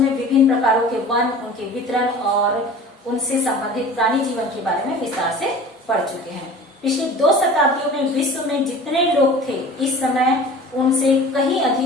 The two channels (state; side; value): normal; both; correlation 0.41